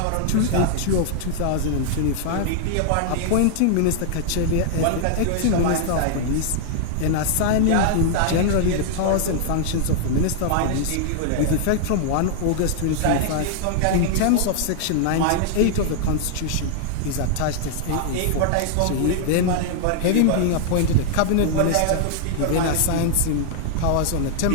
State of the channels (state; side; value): different; both; correlation -0.01